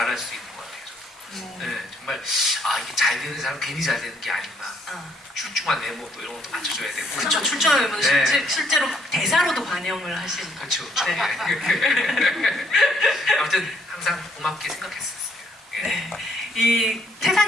수 있는 것 같아요. 저도. 네, 정말 이게 잘 되는 사람 괜히 잘 되는 게 아니구나. 출중한 외모 또 이런 것도 맞춰줘야 되고. 그렇죠. 출중하면 네. 실제로 대사로도 반영을 하신. 그렇죠. 네. 아무튼 항상 고맙게 생각했었어요. 네. 이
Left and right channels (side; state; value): both; normal; correlation 0.67